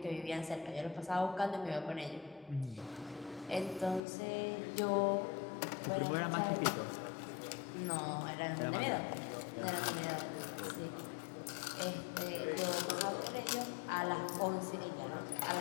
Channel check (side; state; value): right; drops out; at 4.0 s